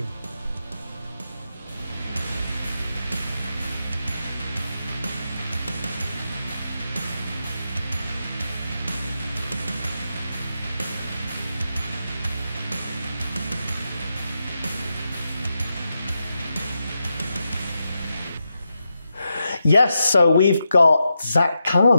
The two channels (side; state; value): both; inverted; correlation -0.87